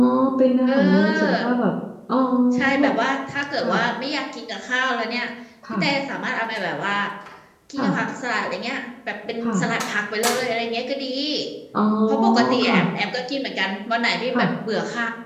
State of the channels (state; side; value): identical; both; correlation 1.00